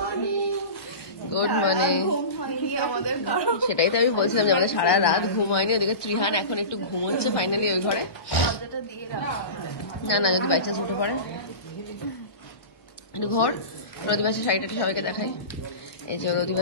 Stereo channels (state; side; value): late; right; 1.2 ms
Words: গুড মর্নিং। সেটাই তো আমি বলছিলাম যে আমাদের সারা রাত ঘুম হয়নি। ওদিকে ত্রিহান এখন একটু ঘুমোচ্ছে ফাইনালি ওই ঘরে। না না, যদি বাই চান্স উঠে পড়ে একটু ঘর। রদিবাসের শাড়িটা সবাইকে দেখাই। এই যে